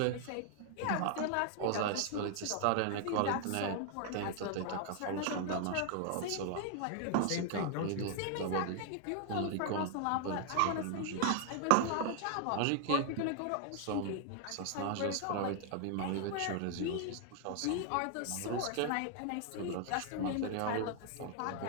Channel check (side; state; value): both; different; correlation 0.00